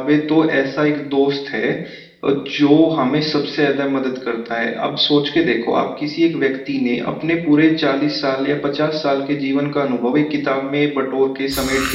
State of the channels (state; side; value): identical; both; correlation 1.00